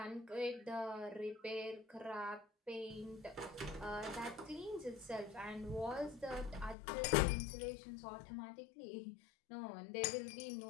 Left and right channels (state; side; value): drops out; right; at 6.8 s